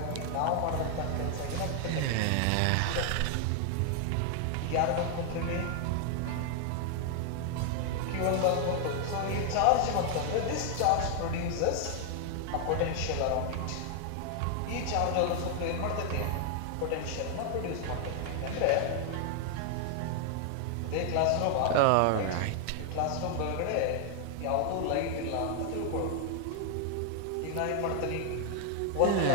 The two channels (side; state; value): both; different; correlation 0.00